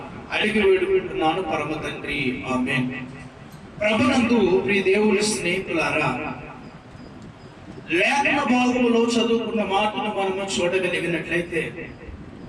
అడిగి వేడుకుంటున్నాను పరమ తండ్రి, ఆమేన్. ప్రభునందు ప్రియ దేవుని స్నేహితులారా, లేఖన భాగములో చదువుకున్న మాటను మనము చూడగలిగినట్లయితే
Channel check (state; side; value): identical; both; correlation 1.00